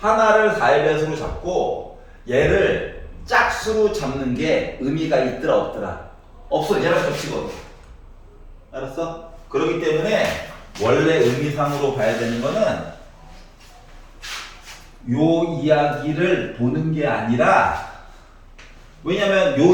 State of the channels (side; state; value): both; identical; correlation 1.00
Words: 4의 배수로 잡고 얘를 짝수로 잡는 게 의미가 있더라 없더라? 없어. 얘랑 겹치거든. 알았어? 그렇기 때문에 원래 의미상으로 봐야 되는 거는 요 이야기를 보는 게 아니라, 왜냐면 요